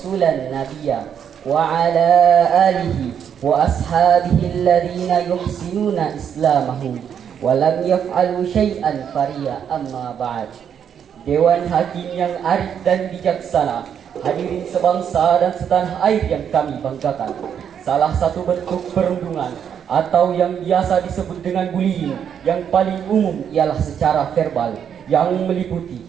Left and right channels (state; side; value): quieter; left; 8.3 dB